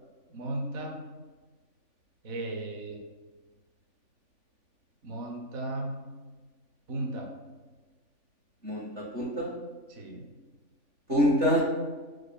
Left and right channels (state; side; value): late; left; 3.5 ms